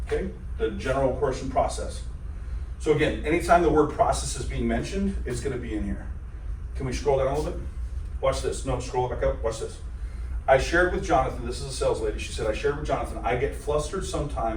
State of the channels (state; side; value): identical; both; correlation 1.00